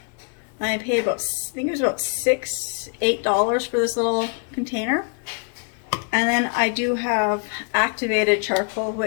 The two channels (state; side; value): quieter; right; 39.1 dB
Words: I paid about, I think it was about $8 for this little container. And then I do have activated charcoal,